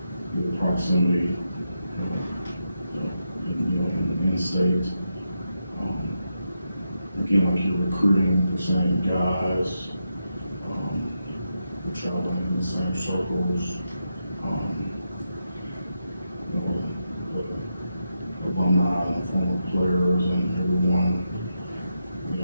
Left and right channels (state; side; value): inverted; both; correlation -0.85